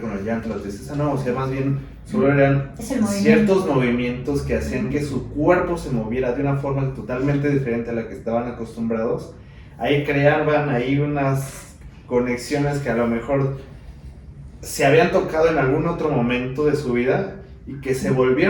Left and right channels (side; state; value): both; identical; correlation 1.00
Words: el llanto, la tristeza, no, o sea, más bien solo eran ciertos movimientos que hacían que su cuerpo se moviera de una forma totalmente diferente a la que estaban acostumbrados. Ahí creaban unas conexiones que a lo mejor se habían tocado en algún otro momento de su vida y que se